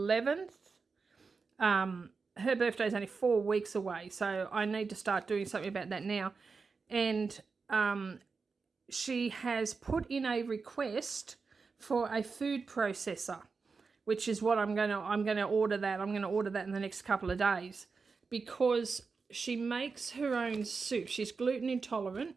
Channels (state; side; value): quieter; left; 4.7 dB